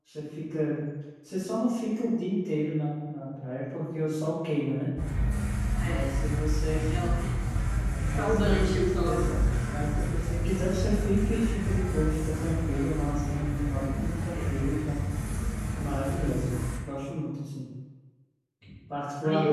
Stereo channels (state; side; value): identical; both; correlation 1.00